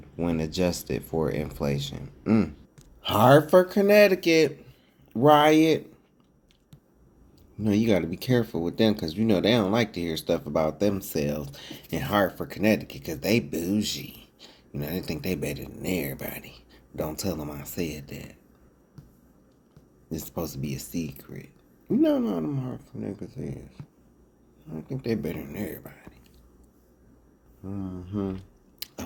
when adjusted for inflation. Hartford, Connecticut riot. You know, you got to be careful with them because, you know, they don't like to hear stuff about themselves in Hartford, Connecticut because they bougie. You know, they think they better than everybody. Don't tell them I said that. It's supposed to be a secret. You know how them Hartford niggas is. I think they better than everybody.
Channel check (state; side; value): identical; both; correlation 1.00